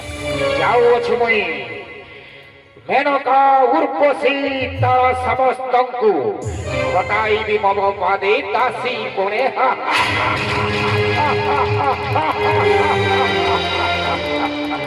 जाऊ अछ मई मेनका उर्वशी तार समस्तंकु ঘটাইবি মম পাদে দাসী কোণে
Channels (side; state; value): both; identical; correlation 1.00